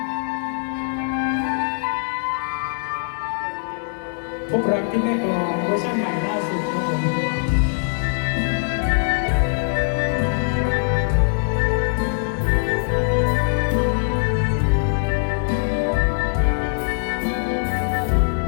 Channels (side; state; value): right; silent; 63 dB below the other